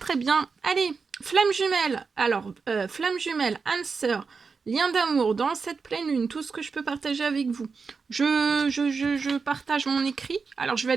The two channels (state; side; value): quieter; left; 5.0 dB